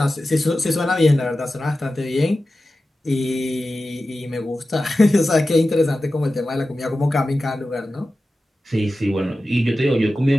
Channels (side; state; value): both; normal; correlation 0.94